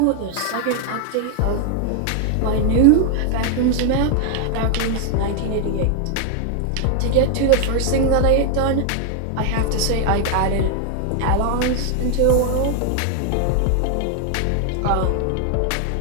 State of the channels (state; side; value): different; both; correlation 0.00